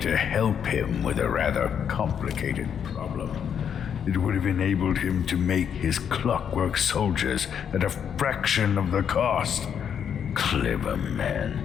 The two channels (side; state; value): right; quieter; 8.1 dB